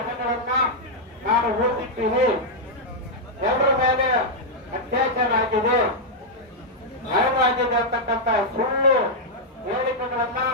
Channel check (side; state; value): both; normal; correlation -0.04